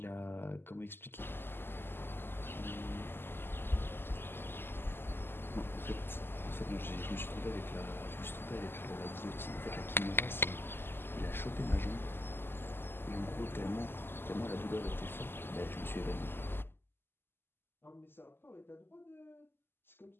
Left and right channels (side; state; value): right; late; 0.11 ms